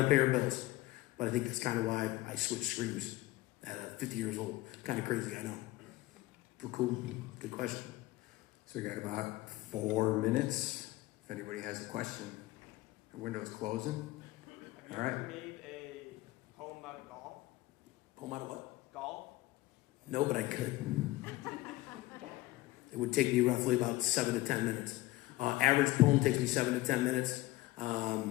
pay our bills. But I think that's kind of why I switched streams at 50 years old. Kind of crazy, I know. But cool. Good question. So we got about 4 minutes. If anybody has a question. The window's closing. Have you ever made a poem out of golf? Poem out of what? Golf? No, but I could. It would take me roughly about 7 to 10 minutes. Average poem takes me 7 to 10 minutes.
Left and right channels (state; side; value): quieter; right; 18.2 dB